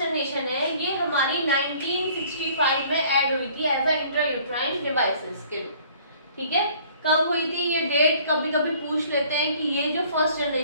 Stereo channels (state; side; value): inverted; both; correlation -0.55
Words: जनरेशन है, ये हमारी 1965 में ऐड हुई थी एज अ इंट्रायूट्राइन डिवाइसेस के रूप। ठीक है, कब हुई थी ये डेट कभी कभी पूछ लेते हैं कि ये जो फर्स्ट